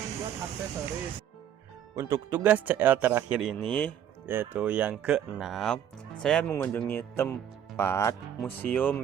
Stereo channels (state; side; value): quieter; left; 9.8 dB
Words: buat aksesoris. Untuk tugas CL terakhir ini, yaitu yang ke-6, saya mengunjungi tempat museum